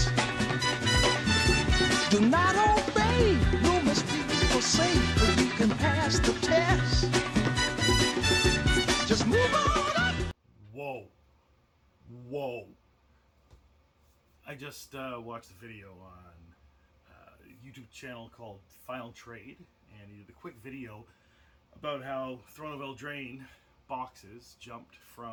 Do not obey, you must be forsake, but you can pass the test. Just move on up. Whoa. I just watched a video on a YouTube channel called Final Trade, and he did a quick video about how Throne of Eldraine boxes jumped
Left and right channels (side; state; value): both; identical; correlation 1.00